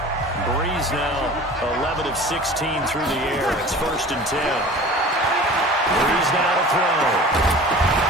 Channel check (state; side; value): normal; both; correlation 0.41